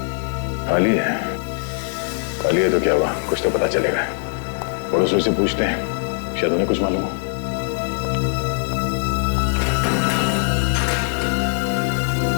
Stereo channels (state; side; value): silent; right; digital silence